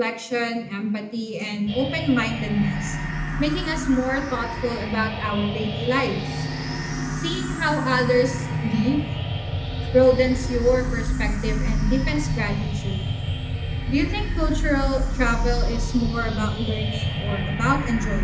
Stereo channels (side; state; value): both; identical; correlation 1.00